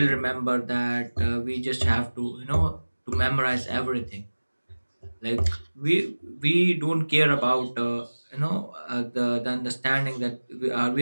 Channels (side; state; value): both; inverted; correlation -1.00